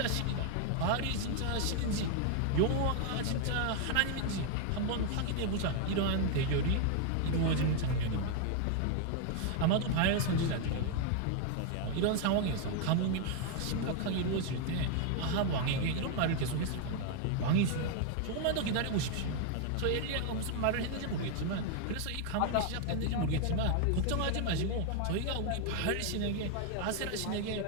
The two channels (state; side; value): different; both; correlation 0.00